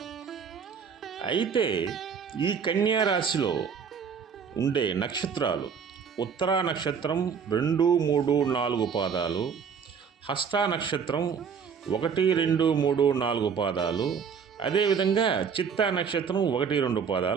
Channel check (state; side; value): quieter; left; 6.6 dB